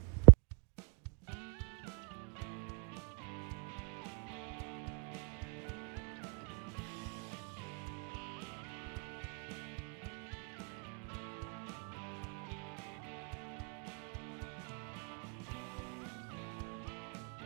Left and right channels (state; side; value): quieter; left; 37.8 dB